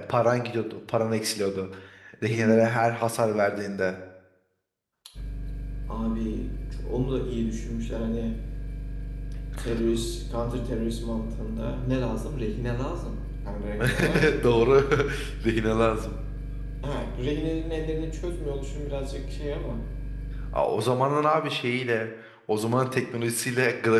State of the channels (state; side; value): identical; both; correlation 1.00